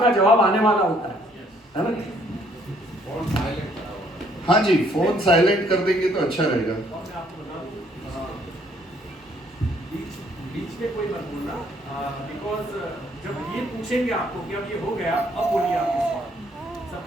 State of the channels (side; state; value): both; normal; correlation 0.65